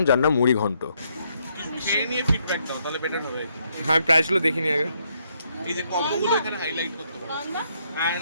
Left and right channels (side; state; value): both; inverted; correlation -0.74